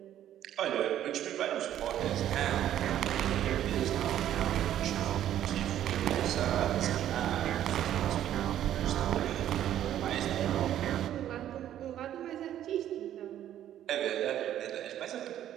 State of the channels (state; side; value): quieter; left; 11.5 dB